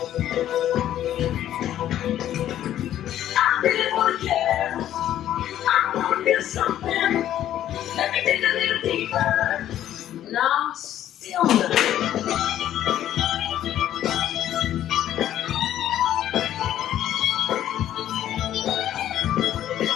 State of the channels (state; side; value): quieter; right; 11.8 dB